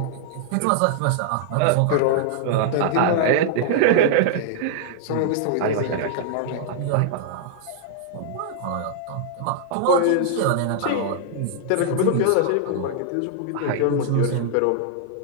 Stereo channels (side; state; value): both; different; correlation -0.01